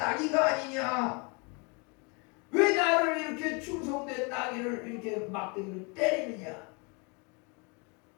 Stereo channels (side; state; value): right; quieter; 31.8 dB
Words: 아니냐, 왜 나를 이렇게 충성된 나귀를 이렇게 막대기를 때리느냐.